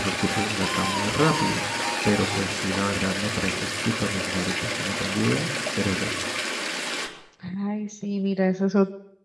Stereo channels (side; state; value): both; identical; correlation 1.00